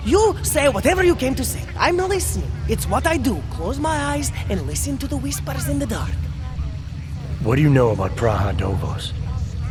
you say whatever you came to say. I'm listening. It's what I do. Close my eyes and listen to the whispers in the dark. What do you know about Praha Dovos?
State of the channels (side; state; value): both; identical; correlation 1.00